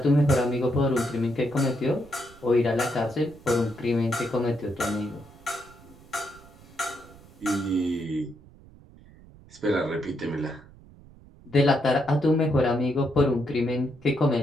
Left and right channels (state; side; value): noise; right; rumble, 23 dB below the sound